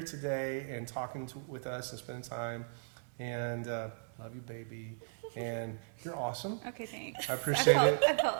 today and talking with us and spending time. And love you, baby. And you're awesome. Okay, thanks. I appreciate it. I felt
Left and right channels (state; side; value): silent; left; digital silence